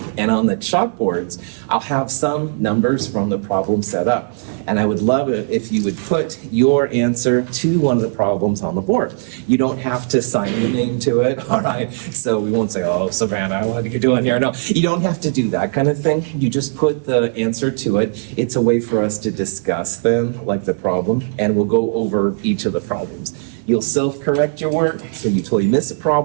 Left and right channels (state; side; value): silent; left; 65 dB below the other